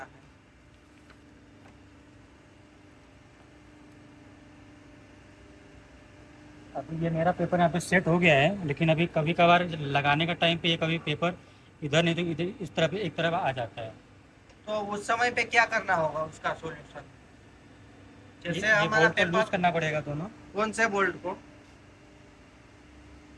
है। अभी ये मेरा पेपर यहाँ पे सेट हो गया है, लेकिन अभी कभी कभार लगाने का टाइम पे ये कभी पेपर इधर नहीं तो इधर इस तरफ एक तरफ आ जाता है। तो उस समय पे क्या करना होगा उसका सॉल्यूशन? जैसे ये हमारा बोल्ट को लूज पेपर, करना पड़ेगा दोनों। कौन से बोल्ट को?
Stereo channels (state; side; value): identical; both; correlation 1.00